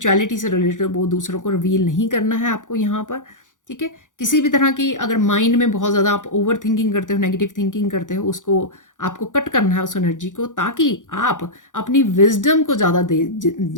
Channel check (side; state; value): right; late; 0.87 ms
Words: से रिलेटेड वो दूसरों को रिवील नहीं करना है आपको यहाँ पर, ठीक है। किसी भी तरह की अगर माइंड में बहुत ज़्यादा आप ओवर थिंकिंग करते हो, नेगेटिव थिंकिंग करते हो, उसको आपको कट करना है उस एनर्जी को, ताकि आप अपनी विजडम को ज़्यादा